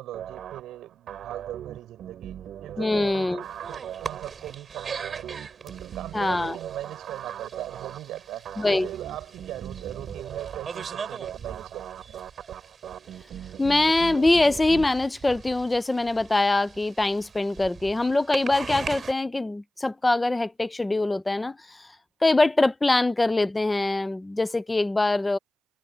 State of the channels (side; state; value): both; normal; correlation 0.96